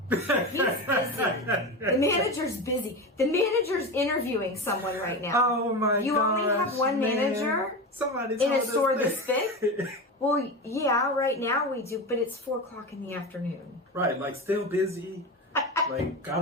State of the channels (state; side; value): normal; both; correlation 0.23